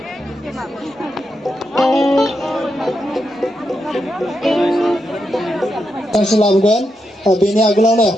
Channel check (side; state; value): both; normal; correlation 0.84